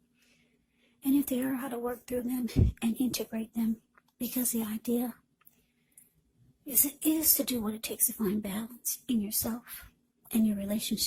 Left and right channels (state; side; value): identical; both; correlation 1.00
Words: And if they are, how to work through them and integrate them. Because the idea is to do what it takes to find balance in yourself and your